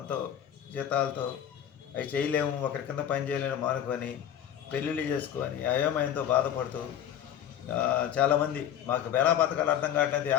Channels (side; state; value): right; quieter; 10.2 dB